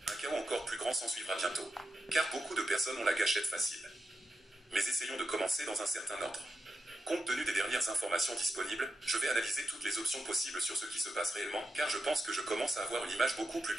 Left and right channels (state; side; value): normal; both; correlation 0.88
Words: un chaos encore plus grand s'ensuivra bientôt. Car beaucoup de personnes ont la gâchette facile. Mais essayons de commencer dans un certain ordre. Compte tenu des dernières informations disponibles, je vais analyser toutes les options possibles sur ce qui se passe réellement, car je pense que je commence à avoir une image beaucoup plus